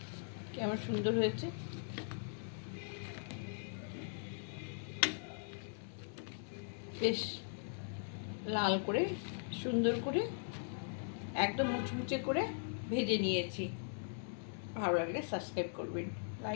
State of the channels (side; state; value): right; silent; digital silence